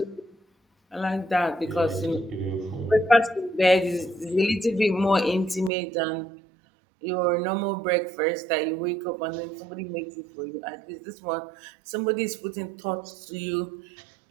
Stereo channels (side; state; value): left; drops out; at 5.7 s